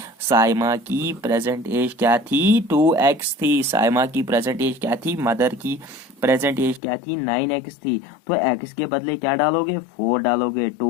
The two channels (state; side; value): drops out; right; at 6.8 s